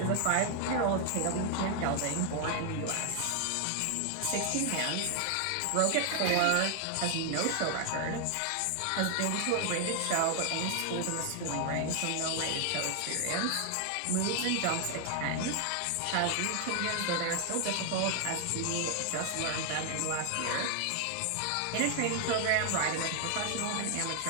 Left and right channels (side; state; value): both; different; correlation 0.00